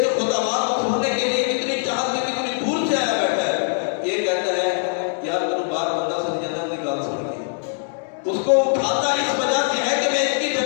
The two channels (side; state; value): right; silent; digital silence